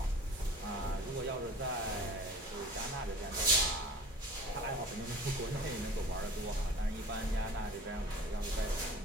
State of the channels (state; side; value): normal; both; correlation 0.42